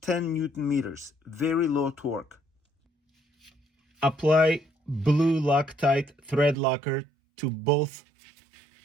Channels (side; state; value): left; drops out; at 6.6 s